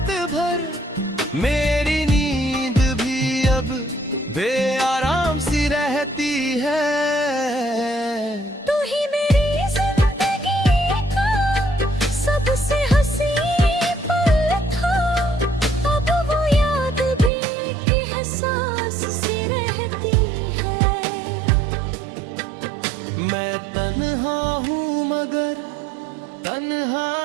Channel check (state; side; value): drops out; left; at 17.3 s